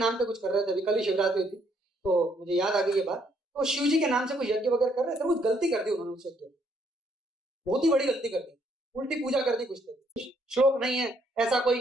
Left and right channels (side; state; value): both; normal; correlation 0.69